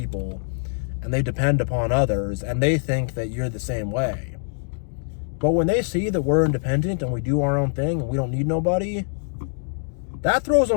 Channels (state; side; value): silent; right; digital silence